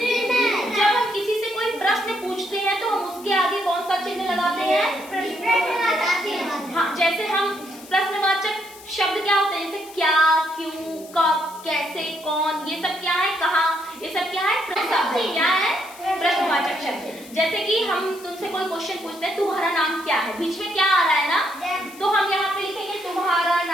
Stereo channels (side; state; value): left; noise; hiss, 19 dB below the sound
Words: हम किसी से कोई प्रश्न पूछते हैं तो हम उसके आगे कौन सा चिन्ह लगाते हैं? हाँ, जैसे हम प्रश्नवाचक शब्द क्या होते हैं? जैसे क्या, क्यों, कब, कैसे, कौन, ये सब क्या है? कहाँ, ये सब क्या है? शब्द क्या है? प्रश्नवाचक शब्द। जैसे कि हम तुमसे कोई क्वेश्चन पूछते हैं, तुम्हारा नाम क्या है? बीच में क्या आ रहा है ना, तो हम यहाँ पे लिखेंगे तुम्हारा